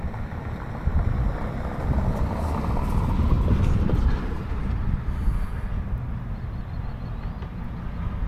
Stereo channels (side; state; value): both; identical; correlation 1.00